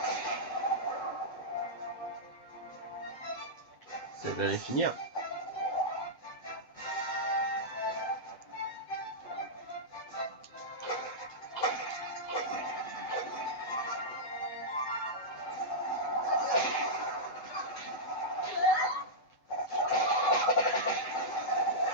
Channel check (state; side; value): late; right; 8.0 ms